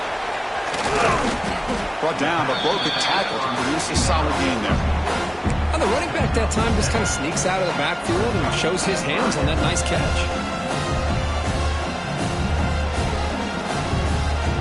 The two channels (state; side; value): identical; both; correlation 1.00